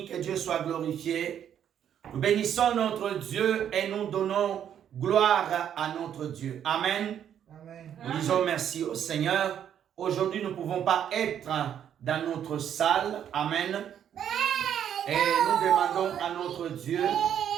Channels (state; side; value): quieter; left; 9.5 dB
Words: que Dieu soit glorifié. Nous bénissons notre Dieu et nous donnons gloire à notre Dieu. Amen. Amen. Nous disons merci au Seigneur. Aujourd'hui, nous ne pouvons pas être dans notre salle. Amen. Et nous demandons à notre Dieu